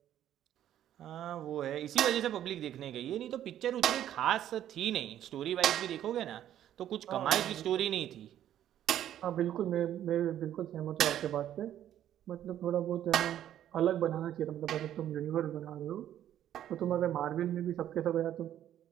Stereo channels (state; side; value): quieter; left; 11.3 dB